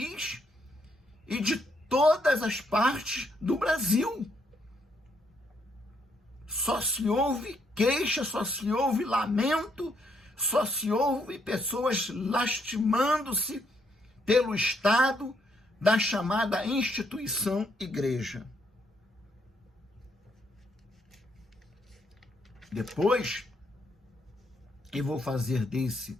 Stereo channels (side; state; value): both; normal; correlation 0.73